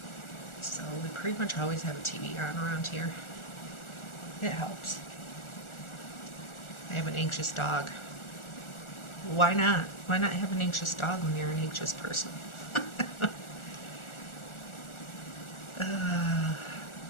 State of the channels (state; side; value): late; right; 1.4 ms